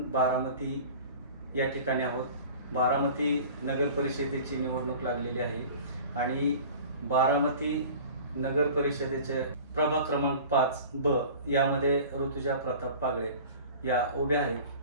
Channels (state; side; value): inverted; both; correlation -0.41